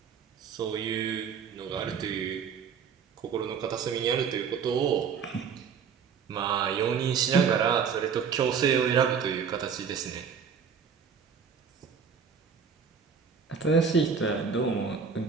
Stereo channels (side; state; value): left; quieter; 6.6 dB